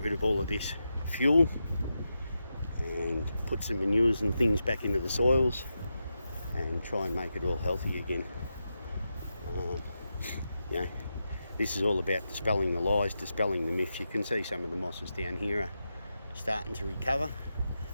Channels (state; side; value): inverted; both; correlation -0.88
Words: rid of all of this fuel and put some manures and things back into the soils and try and make it all healthy again. This is all about dispelling the lies, dispelling the myths. You can see some of the mosses down here are starting to recover,